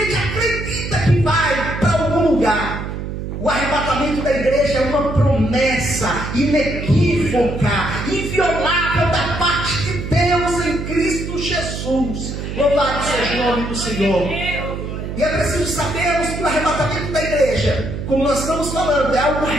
acredita que vai para algum lugar. O arrebatamento da igreja é uma promessa inequívoca, inviolável da parte de Deus em Cristo Jesus. Louvado seja o nome do Senhor. E é preciso sabermos que o arrebatamento da igreja, como nós estamos falando, é algo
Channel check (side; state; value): right; noise; hum, 6 dB below the sound